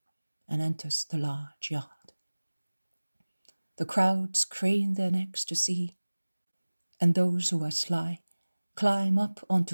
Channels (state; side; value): inverted; both; correlation -1.00